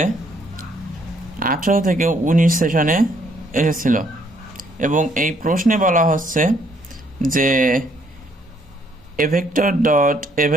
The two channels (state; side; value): normal; both; correlation 0.67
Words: 18 থেকে 19 সেশনে এসেছিল এবং এই প্রশ্নে বলা হচ্ছে যে এ ভেক্টর ডট এ